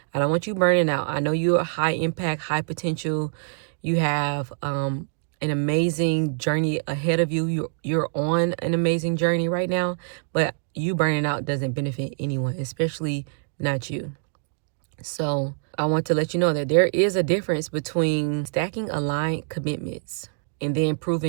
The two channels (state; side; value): silent; left; digital silence